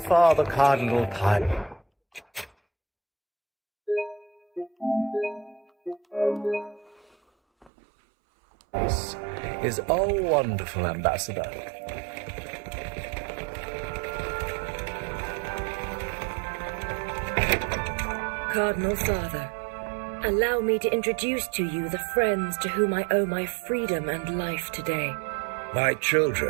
Father Cardinal Pilot. This is a wonderful ambassador. Cardinal Father, allow me to introduce to you the friends to whom I owe my freedom and life today. My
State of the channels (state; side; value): drops out; left; at 7.7 s